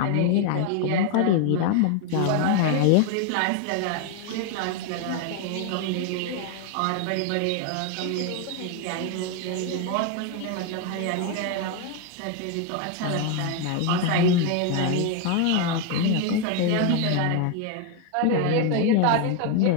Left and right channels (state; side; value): different; both; correlation 0.01